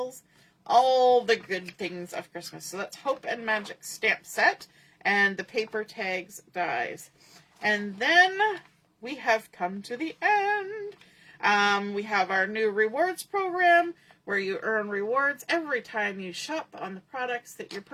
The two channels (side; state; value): both; identical; correlation 1.00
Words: all the good things of Christmas. So that's Hope and Magic stamp set, and the paper tags dies. And then we have come to the end. We have our new rewards program where you earn rewards every time you shop on the products that you're